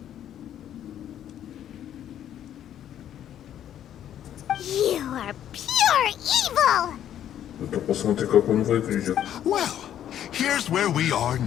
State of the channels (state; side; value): quieter; right; 10.6 dB